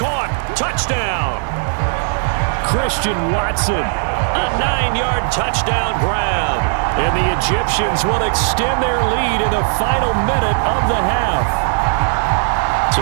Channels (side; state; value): left; silent; digital silence